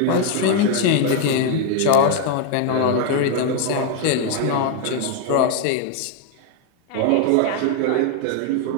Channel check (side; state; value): both; different; correlation 0.01